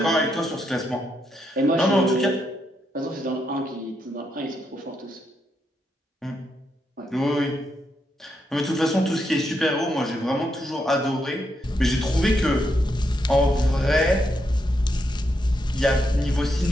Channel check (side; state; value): both; normal; correlation 0.81